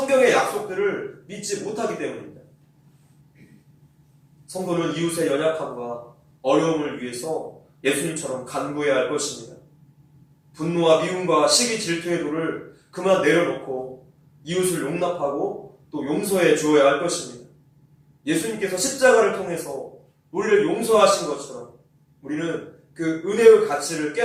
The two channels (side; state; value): both; identical; correlation 1.00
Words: 약속들을 믿지 못하기 때문입니다. 성도는 이웃의 연약함과 어려움을 위해서 예수님처럼 간구해야 할 것입니다. 분노와 미움과 시기 질투의 돌을 그만 내려놓고 이웃을 용납하고 또 용서해 주어야 할 것입니다. 예수님께서 십자가를 통해서 우리를 용서하신 것처럼 우리는 그 은혜의 가치를